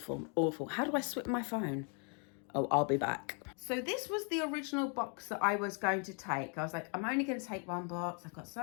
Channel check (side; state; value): right; quieter; 39.3 dB